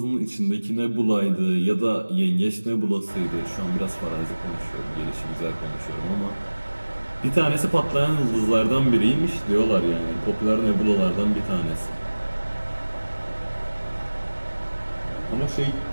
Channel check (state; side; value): inverted; both; correlation -1.00